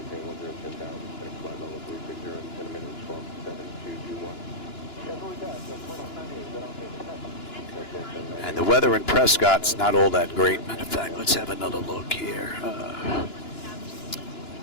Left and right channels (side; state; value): right; late; 2.9 ms